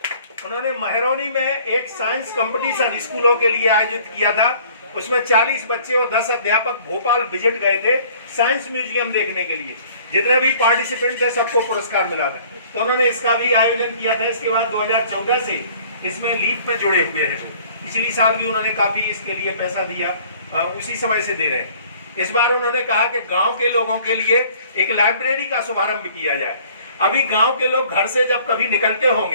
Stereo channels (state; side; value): inverted; both; correlation -0.54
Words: उन्होंने महरौनी में एक साइंस कंपटीशन स्कूलों के लिए आयोजित किया था, उसमें 40 बच्चे और 10 अध्यापक भोपाल विजिट गए थे साइंस म्यूजियम देखने के लिए। जितने भी पार्टिसिपेंट थे सबको पुरस्कार मिला था, तो उन्होंने इसका भी आयोजन किया था। इसके बाद 2014 से इसमें लीप में जुड़े हुए हैं, पिछली साल भी उन्होंने काफी इसके लिए पैसा दिया, उसी समय से दे रहे हैं। इस बार उन्होंने कहा कि गांव के लोगों के लिए एक लाइब्रेरी का शुभारंभ किया जाए। अभी गांव के लोग घर से जब कभी निकलते